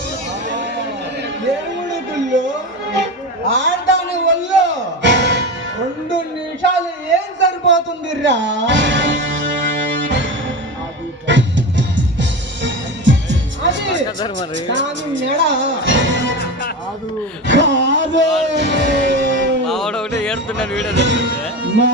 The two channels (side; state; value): both; normal; correlation 0.24